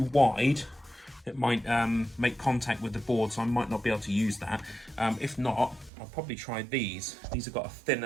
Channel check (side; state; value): left; drops out; at 5.9 s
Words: wide it might make contact with the board, so I might not be able to use that. If not, I'll probably try these. These have got a